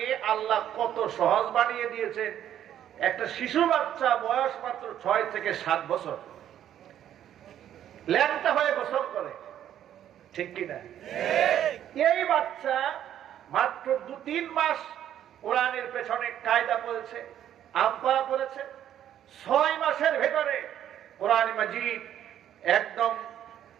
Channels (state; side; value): quieter; left; 10.8 dB